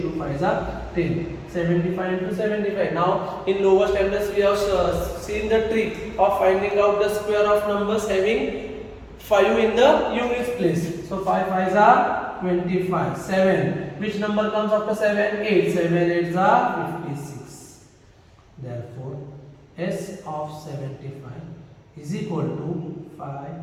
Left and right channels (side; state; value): both; identical; correlation 1.00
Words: 2 fives are 10. 75 into 75. Now in lower standards we have seen the trick of finding out the square of numbers having 5 in the units place. So 5 fives are 25. 7. Which number comes after 7? 8. 7 eights are 56. Therefore S of 75 is equal to 5,